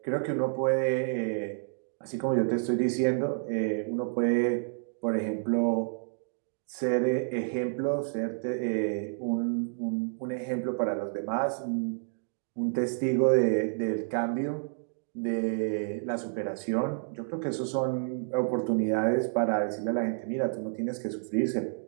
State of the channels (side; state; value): left; silent; digital silence